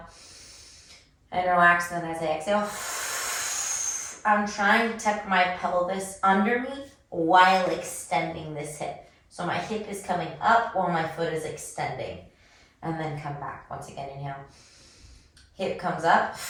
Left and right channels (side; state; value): both; identical; correlation 1.00